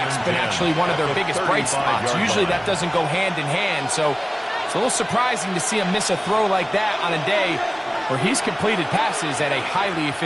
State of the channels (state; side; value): identical; both; correlation 1.00